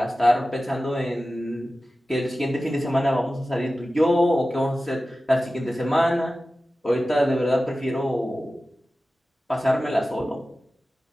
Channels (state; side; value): normal; both; correlation 0.95